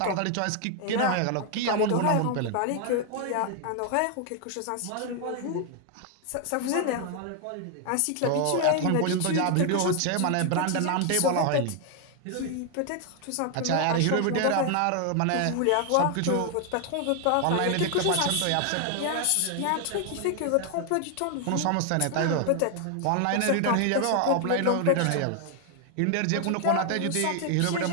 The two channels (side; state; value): both; different; correlation 0.00